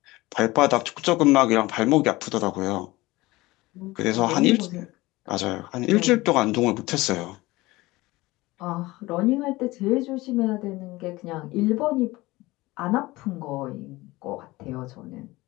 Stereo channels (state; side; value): quieter; right; 20.1 dB